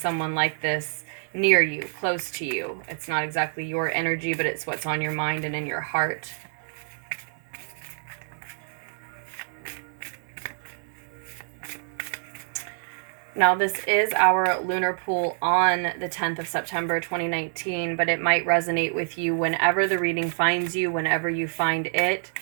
like this near you, close to you. It's not exactly your energy, but it's what's on your mind and in your heart. Now, this is our lunar pool on the 10th of September, 2019, but it might resonate with you whenever the reading finds you, whenever you find it.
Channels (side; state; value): left; silent; digital silence